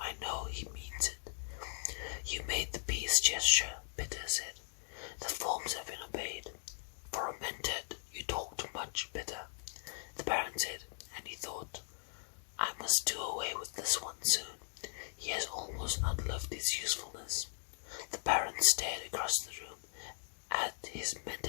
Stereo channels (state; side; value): silent; right; digital silence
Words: I know he means it. You made the peace gesture, Peter said. The forms have been obeyed. For a mentat, you talk too much, Peter, the Baron said, and he thought, I must do away with this one soon. He has almost outlived his usefulness. The Baron stared across the room at his